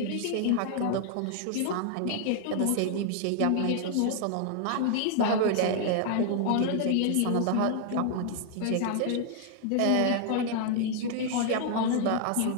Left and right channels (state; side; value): different; both; correlation 0.00